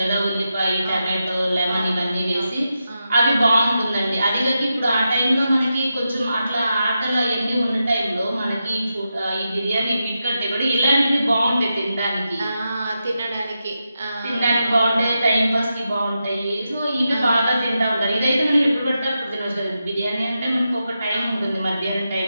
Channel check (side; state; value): both; inverted; correlation -0.88